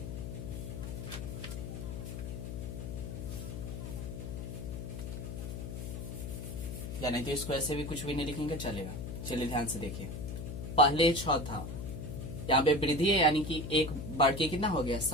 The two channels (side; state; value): left; noise; hum, 6 dB below the sound